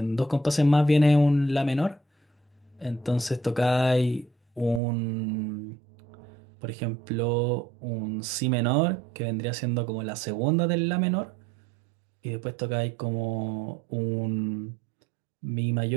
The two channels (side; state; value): left; drops out; at 4.8 s